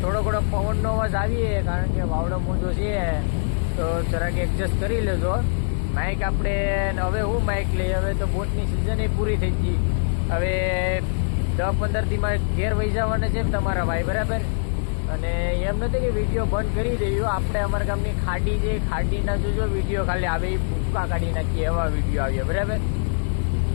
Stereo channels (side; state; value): right; silent; 63 dB below the other